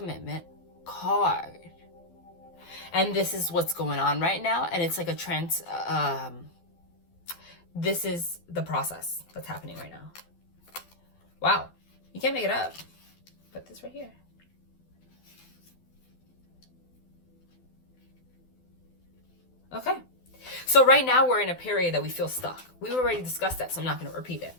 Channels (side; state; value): right; late; 12 ms